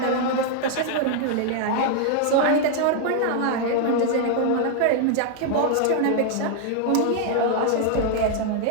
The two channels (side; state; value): both; different; correlation 0.00